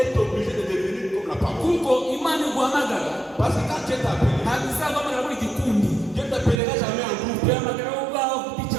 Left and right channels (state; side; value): drops out; left; at 6.6 s